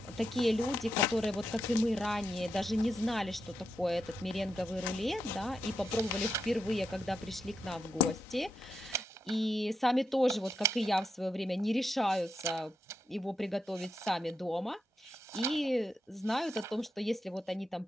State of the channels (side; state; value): both; normal; correlation 0.84